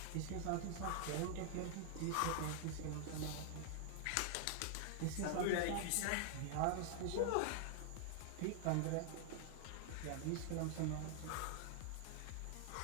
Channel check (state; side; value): different; both; correlation -0.01